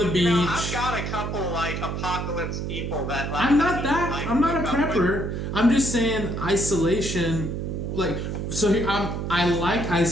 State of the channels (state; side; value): noise; right; hum, 3 dB below the sound